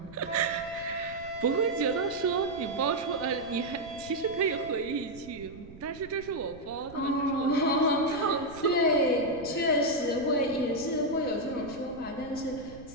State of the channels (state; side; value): noise; right; rumble, 18 dB below the sound